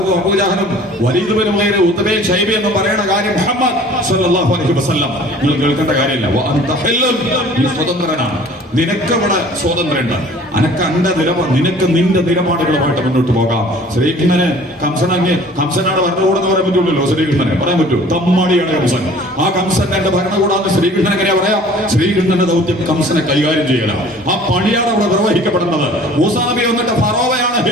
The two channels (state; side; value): normal; both; correlation 0.49